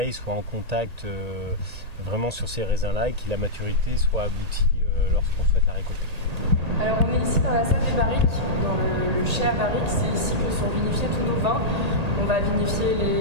soit en contact vraiment sur ces raisins-là et que la maturité soit aboutie lorsqu'on souhaite la récolter. Alors on est ici dans la salle des barriques, dans le chai à barriques, c'est ici que sont vinifiés tous nos vins. On va vinifier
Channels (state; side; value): late; left; 1.8 ms